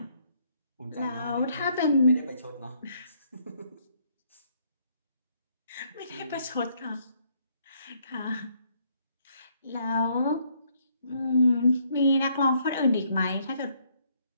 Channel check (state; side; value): inverted; both; correlation -0.69